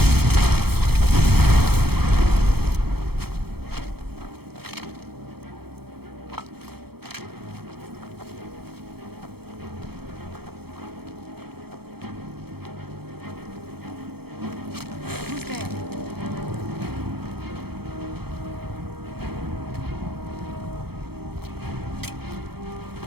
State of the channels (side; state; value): left; late; 0.96 ms